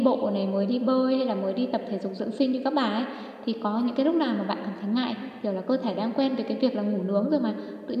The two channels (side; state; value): both; identical; correlation 1.00